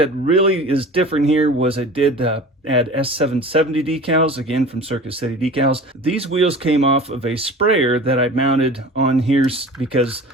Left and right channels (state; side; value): normal; both; correlation 0.39